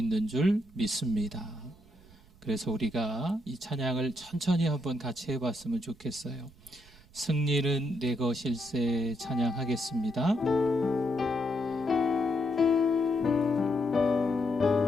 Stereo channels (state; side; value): noise; right; rumble, 25 dB below the sound